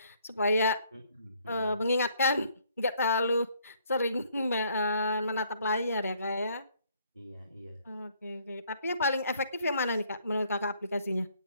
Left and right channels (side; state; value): both; inverted; correlation -0.65